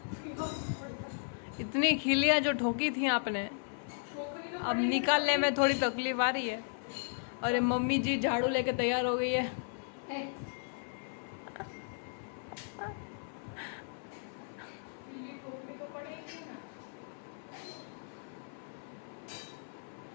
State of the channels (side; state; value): right; silent; 54 dB below the other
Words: इतनी खिलियाँ जो ठोकी थी आपने अब निकालने में थोड़ी तकलीफ आ रही है। और ये मम्मी जी झाड़ू लेके तैयार हो गई है।